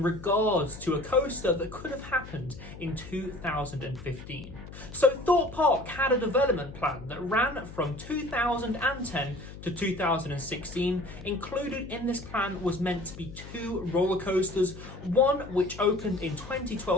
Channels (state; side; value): noise; left; hum, 14 dB below the sound